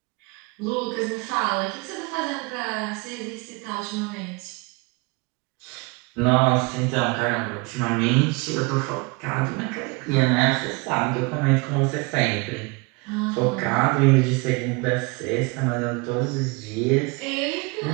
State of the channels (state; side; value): quieter; left; 27.4 dB